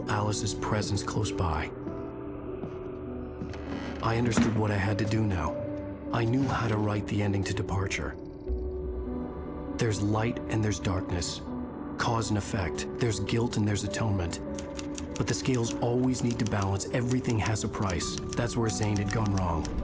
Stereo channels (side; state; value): both; identical; correlation 1.00